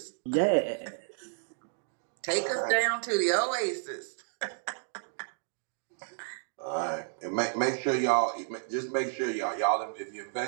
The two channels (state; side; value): silent; left; digital silence